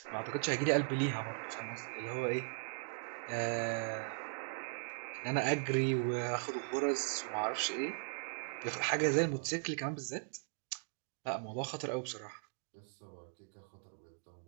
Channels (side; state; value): left; silent; 52 dB below the other